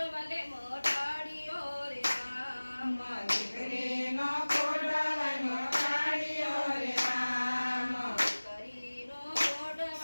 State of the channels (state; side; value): inverted; both; correlation -1.00